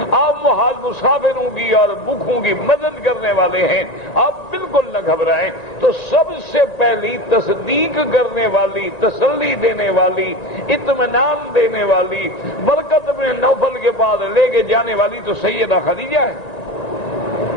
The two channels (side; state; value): right; late; 2.1 ms